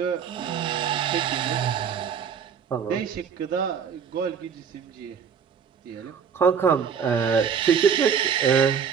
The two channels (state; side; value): quieter; left; 7.1 dB